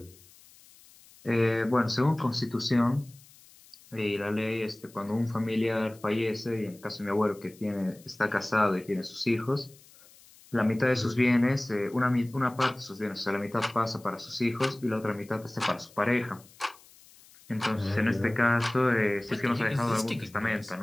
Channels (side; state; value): left; noise; hiss, 25 dB below the sound